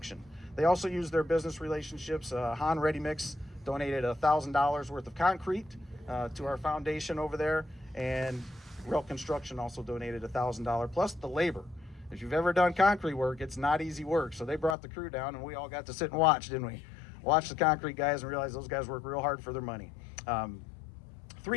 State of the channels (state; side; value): drops out; right; at 14.8 s